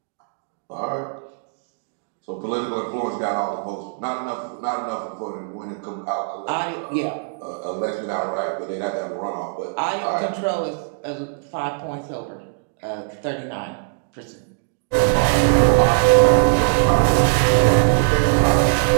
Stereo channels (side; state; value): left; silent; digital silence